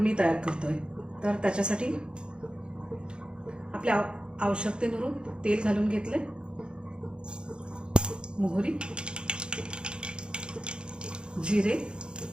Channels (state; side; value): late; left; 0.052 ms